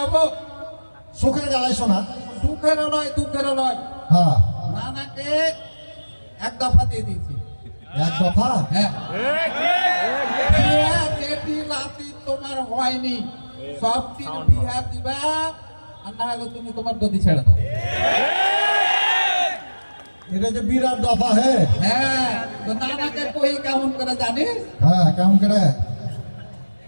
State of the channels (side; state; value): both; inverted; correlation -1.00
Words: সুখের গালাই শোনা। সুখেরও নয়, দুঃখেরও নয়। হ্যাঁ, নানাকে এক দফা দিয়ে দিয়েছি। এক দফা। হ্যাঁ, বিয়া যেটি রাতি তোমার হয়নি, সব দিন বিয়া দিবা, আর না হলে তুমি তোমার গদি ছেড়ে দাও। এটা যে বিরাট দফা। হ্যাঁ হ্যাঁ, তো নানাকে কই কেমন করে জানিস? হ্যাঁ, কেমন করে?